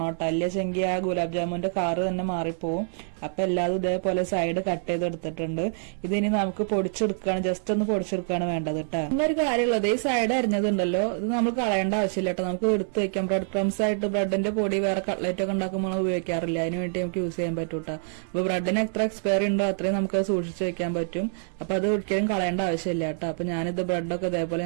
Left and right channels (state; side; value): silent; left; 61 dB below the other